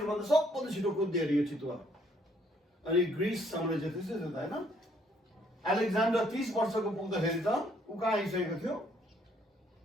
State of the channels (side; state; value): both; normal; correlation 0.66